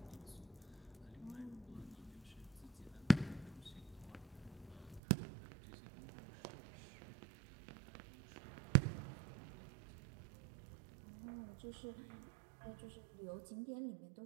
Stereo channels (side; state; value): left; drops out; at 5.0 s